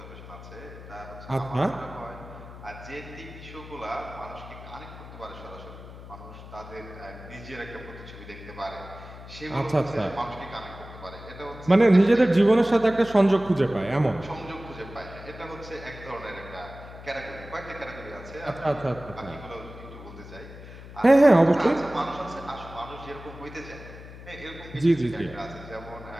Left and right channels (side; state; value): left; noise; hum, 15 dB below the sound